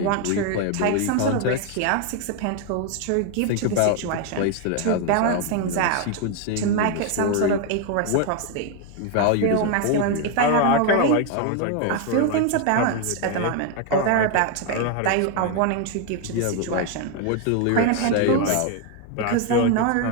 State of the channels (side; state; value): both; different; correlation 0.01